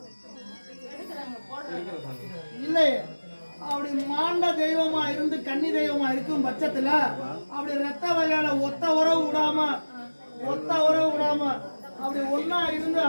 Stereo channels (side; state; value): both; inverted; correlation -1.00